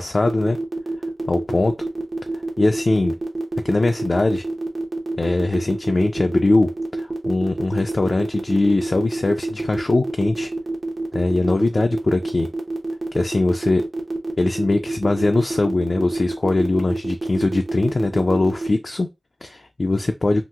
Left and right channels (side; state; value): both; normal; correlation 0.97